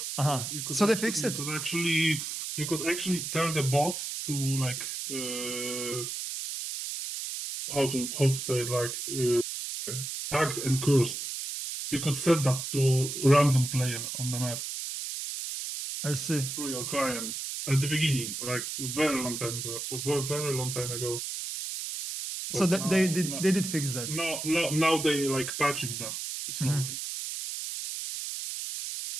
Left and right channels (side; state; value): right; noise; hiss, 5 dB below the sound